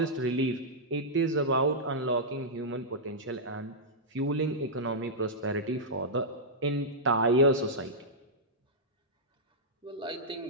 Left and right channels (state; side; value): normal; both; correlation -0.10